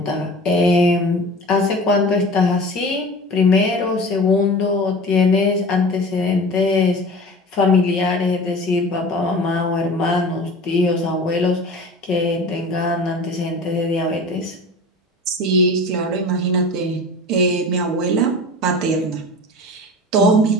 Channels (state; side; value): normal; both; correlation 0.37